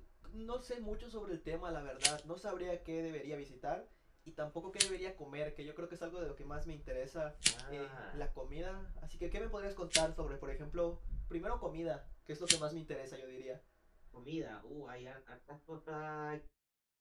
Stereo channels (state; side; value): identical; both; correlation 1.00